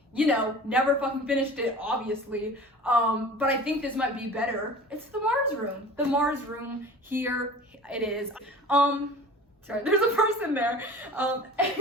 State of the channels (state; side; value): normal; both; correlation 0.40